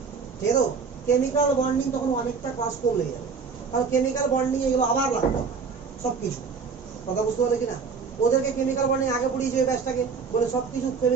ঠিক আছে? কেমিক্যাল বন্ডিং তখন অনেকটা ক্লাস কম লেগে যাবে, কারণ কেমিক্যাল বন্ডিং এগুলো আবার লাগবে সব কিছু। কথা বুঝতে পারলে কিনা? ওদেরকে কেমিক্যাল বন্ডিং আগে পড়িয়েছে ওই ব্যাচটাকে, বলে সব কিছু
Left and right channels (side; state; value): left; quieter; 5.3 dB